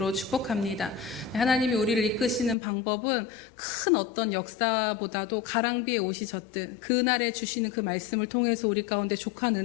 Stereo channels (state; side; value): drops out; right; at 2.6 s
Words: 축복합니다. 네, 하나님이 우리를 이끄시는 방법은 큰 어떤 역사보다도 가랑비에 옷이 젖듯 그날에 주시는 그 말씀을 통해서 우리 가운데 족한